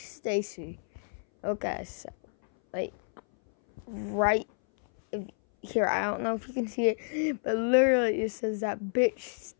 Okay, so, like, right here, I don't know if you can see it, but literally it says that bitch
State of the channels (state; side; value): silent; right; 58 dB below the other